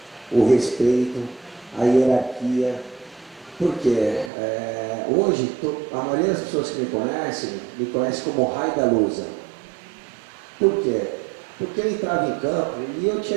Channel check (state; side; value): drops out; left; at 4.3 s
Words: o respeito, a hierarquia. Por quê? Hoje, a maioria das pessoas que me conhece como Rai da Lusa. Por quê? Porque eu entrava em campo e eu